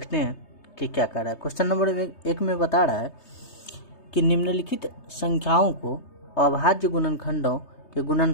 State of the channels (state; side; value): late; right; 3.2 ms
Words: हैं कि क्या कर रहा है। क्वेश्चन नंबर 1 में बता रहा है कि निम्नलिखित संख्याओं को अभाज्य गुणनखंडों के